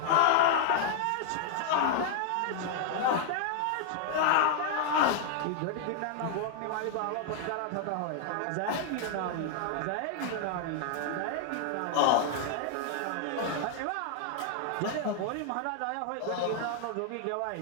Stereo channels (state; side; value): different; both; correlation -0.01